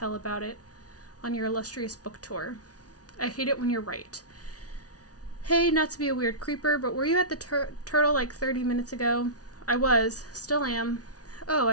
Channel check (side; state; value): right; late; 0.68 ms